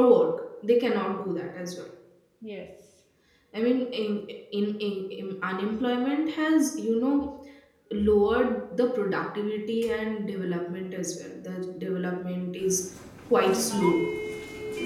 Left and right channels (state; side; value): identical; both; correlation 1.00